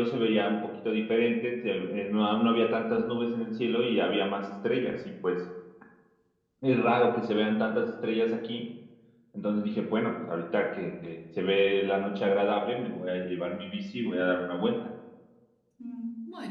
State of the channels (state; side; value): identical; both; correlation 1.00